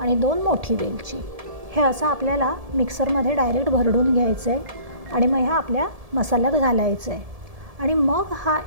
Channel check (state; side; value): late; left; 1.7 ms